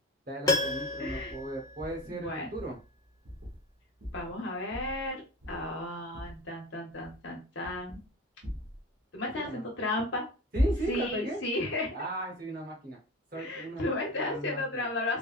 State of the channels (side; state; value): both; normal; correlation 0.32